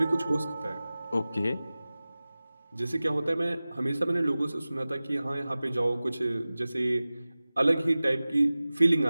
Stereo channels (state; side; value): inverted; both; correlation -0.97